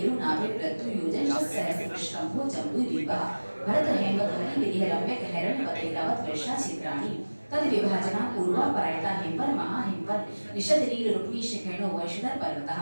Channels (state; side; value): inverted; both; correlation -1.00